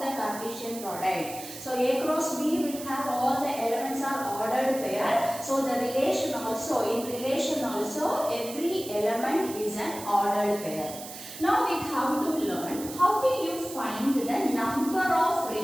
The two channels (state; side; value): noise; right; hiss, 12 dB below the sound